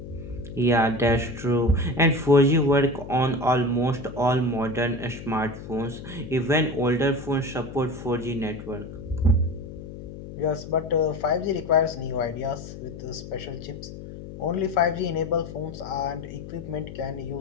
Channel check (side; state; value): left; noise; hum, 12 dB below the sound